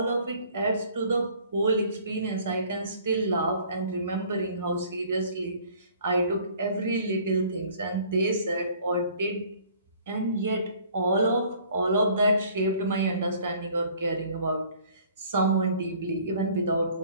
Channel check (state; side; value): inverted; both; correlation -0.54